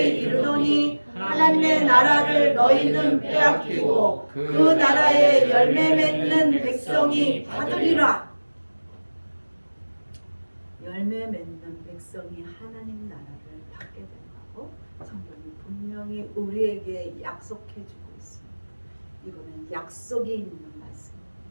이르노니 하나님의 나라를 너희는 빼앗기고 그 나라의 열매 맺는 백성이 받으리라. 열매 맺는 백성이 하나님 나라를 받게 된다고 성경이 분명히 우리에게 약속해 주고 있습니다. 이거는 약속이 있는 말씀입니다.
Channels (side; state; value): both; inverted; correlation -1.00